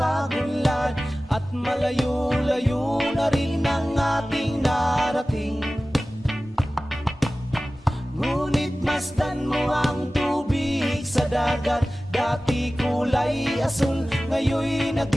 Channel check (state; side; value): normal; both; correlation 0.97